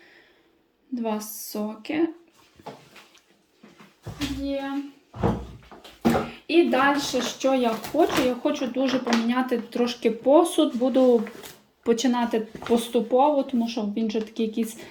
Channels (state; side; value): identical; both; correlation 1.00